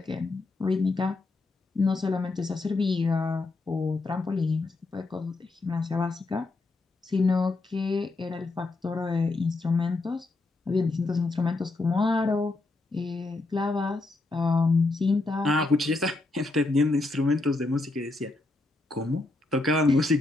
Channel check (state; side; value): quieter; right; 3.3 dB